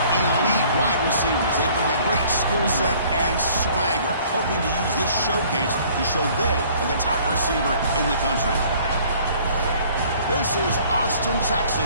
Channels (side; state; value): both; inverted; correlation -0.55